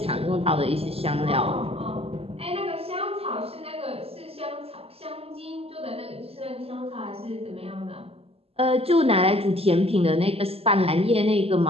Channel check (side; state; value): left; late; 0.29 ms